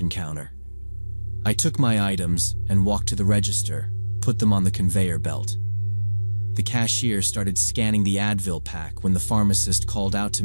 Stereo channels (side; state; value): both; inverted; correlation -1.00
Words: counter. I took my items and walked to the register, put them on the conveyor belt. The cashier started scanning the Advil pack when the pharmacist called out to